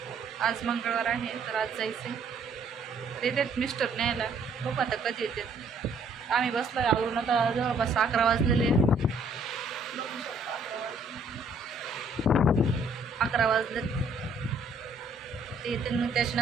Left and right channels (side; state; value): left; quieter; 3.0 dB